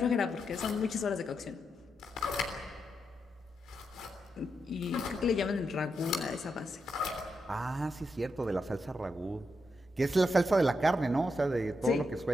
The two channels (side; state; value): both; normal; correlation 0.84